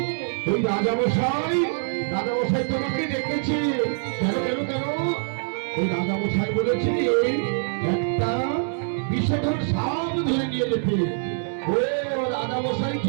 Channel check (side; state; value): left; silent; 62 dB below the other